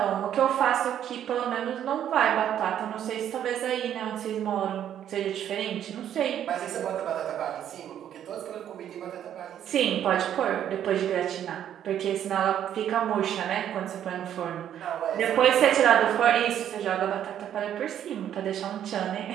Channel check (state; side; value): quieter; left; 10.2 dB